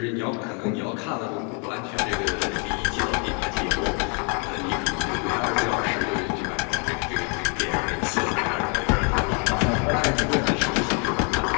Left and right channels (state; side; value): quieter; right; 37.4 dB